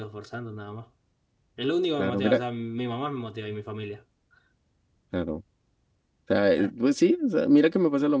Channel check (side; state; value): both; identical; correlation 1.00